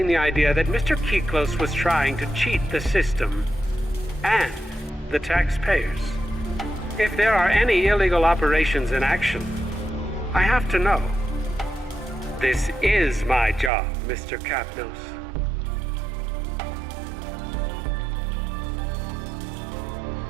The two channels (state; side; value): drops out; left; at 13.7 s